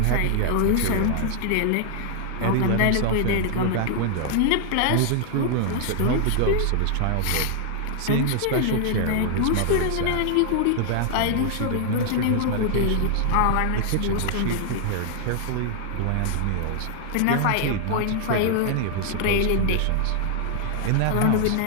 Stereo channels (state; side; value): different; both; correlation 0.00